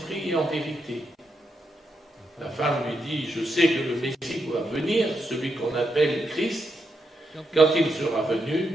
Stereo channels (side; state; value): both; normal; correlation 0.83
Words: et en vérité. La femme lui dit, je sais que le Messie doit venir, celui qu'on appelle Christ. Quand il sera